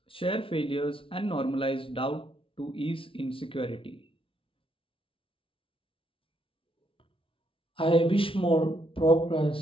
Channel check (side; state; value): right; late; 0.26 ms